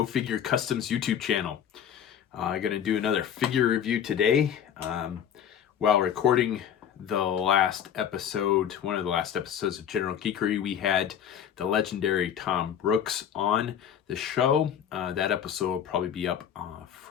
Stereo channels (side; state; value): right; quieter; 9.1 dB